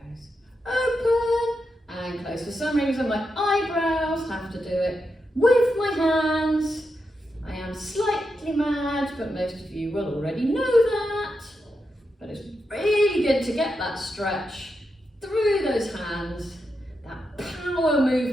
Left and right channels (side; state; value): both; normal; correlation 0.86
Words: open and close. For some reason my eyebrows have to do it with my hands. I am slightly mad, but most of you will already know that. But it's really good to get that stretch through those hands. That power